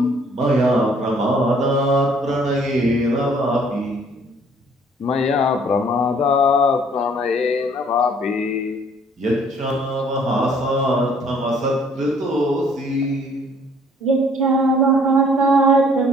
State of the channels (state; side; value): normal; both; correlation 0.59